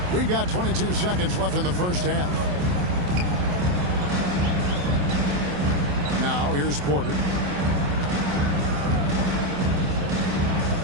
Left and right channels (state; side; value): late; left; 28 ms